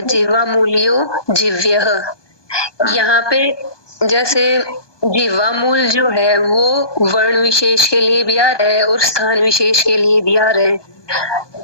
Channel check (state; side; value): late; right; 1.2 ms